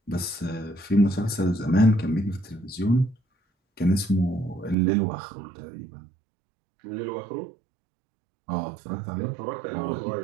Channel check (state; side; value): drops out; left; at 4.8 s